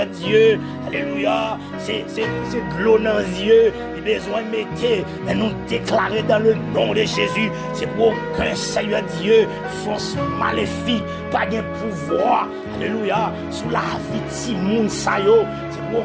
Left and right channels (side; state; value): both; identical; correlation 1.00